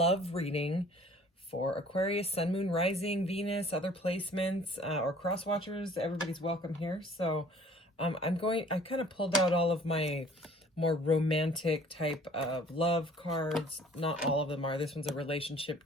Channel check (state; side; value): normal; both; correlation 0.53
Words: reading for Aquarius, Sun, Moon, Rising, Venus, other placements, or cross watchers. Everybody's welcome here. So I kind of pulled out all of my more romantic type of love cards. Not all of them are. This one's a relationship